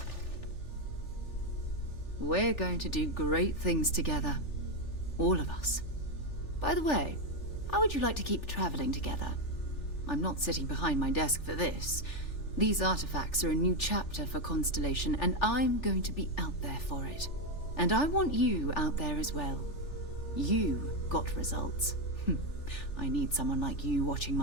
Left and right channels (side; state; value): right; late; 3.4 ms